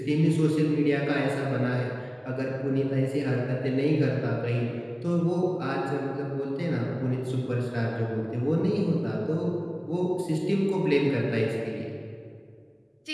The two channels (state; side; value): identical; both; correlation 1.00